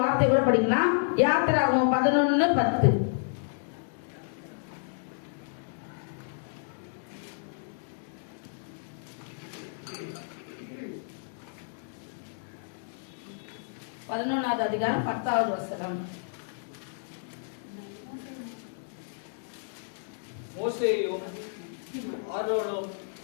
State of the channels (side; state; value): right; silent; 57 dB below the other